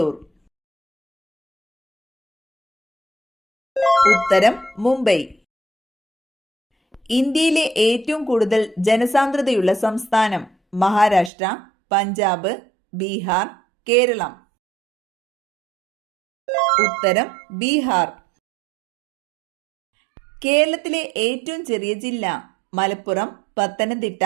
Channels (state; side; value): drops out; left; at 11.3 s